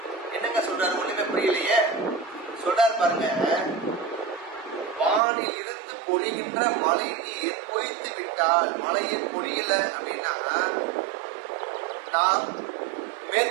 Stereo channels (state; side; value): drops out; left; at 5.2 s